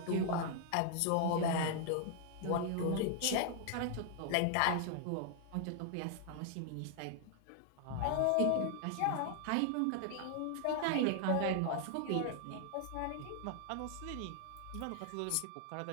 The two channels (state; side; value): different; both; correlation 0.00